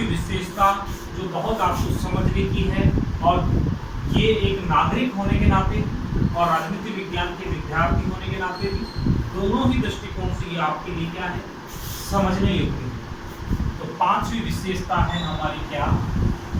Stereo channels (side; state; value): both; identical; correlation 1.00